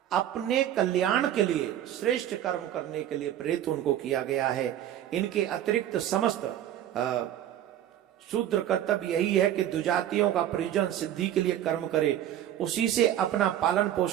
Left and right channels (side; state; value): left; quieter; 11.5 dB